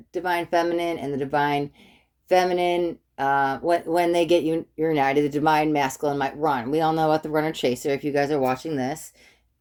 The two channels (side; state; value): both; identical; correlation 1.00